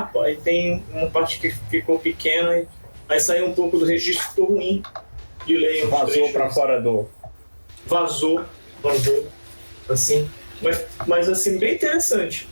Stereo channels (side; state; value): both; inverted; correlation -1.00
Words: aí tem uma parte que ficou pequena, aí saiu um pouco do registro, ficou ruim de ler. Vazou para fora do... Vazou, assim. Mas assim, bem interessante